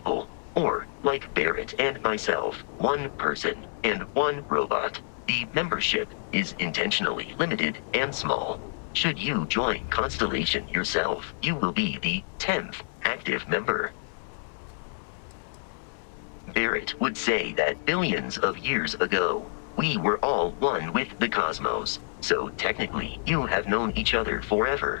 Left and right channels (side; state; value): right; silent; 59 dB below the other